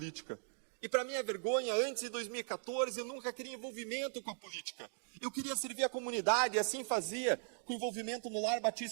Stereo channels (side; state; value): left; silent; 52 dB below the other